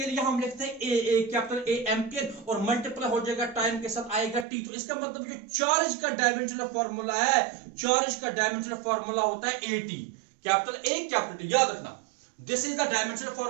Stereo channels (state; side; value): drops out; left; at 4.5 s